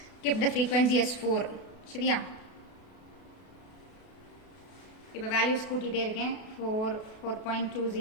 kept the frequency as 4. சரியா? இப்போ values கூட்டிட்டே இருக்கேன். 4,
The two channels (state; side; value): late; right; 32 ms